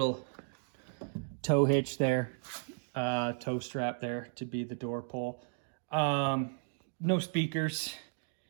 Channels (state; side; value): silent; left; digital silence